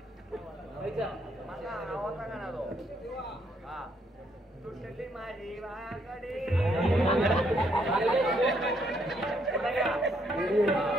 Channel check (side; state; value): both; normal; correlation 0.72